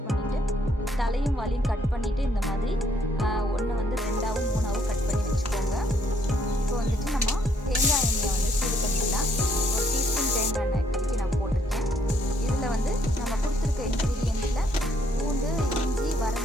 பண்ணிட்டு தலையும் வாலையும் கட் பண்ணிட்டு இந்த மாதிரி ஒண்ணு வந்து ரெண்டாவும் மூணாவும் கட் பண்ணி வெச்சுக்கோங்க. இப்போ வந்துட்டு நம்ம தேங்காய் எண்ணெயை வந்து சூடு பண்ணிடலாம். ஒரு டீஸ்பூன் தேங்காய் எண்ணெய் கலக்கி நான் போட்டுருக்கேன். இதுல வந்து நம்ம கொடுத்திருக்க இன்கிரிடியன்ட்ல பூண்டு, இஞ்சி,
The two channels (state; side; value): normal; both; correlation 0.69